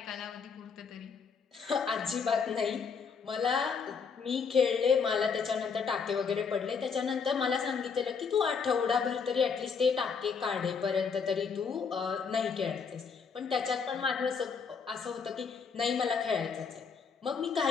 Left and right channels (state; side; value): quieter; right; 5.8 dB